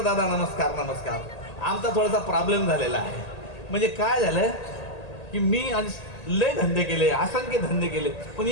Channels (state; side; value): late; right; 1.8 ms